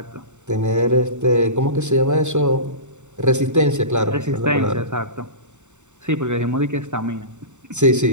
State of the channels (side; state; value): left; late; 0.84 ms